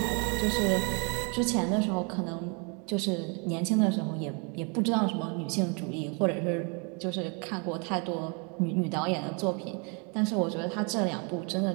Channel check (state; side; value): quieter; left; 34.9 dB